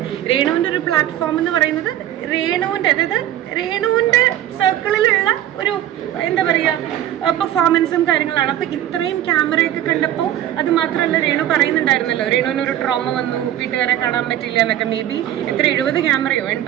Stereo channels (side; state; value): left; quieter; 12.2 dB